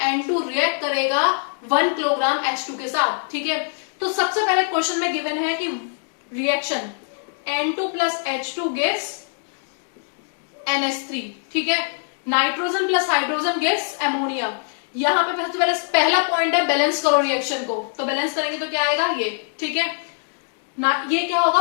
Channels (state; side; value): silent; right; digital silence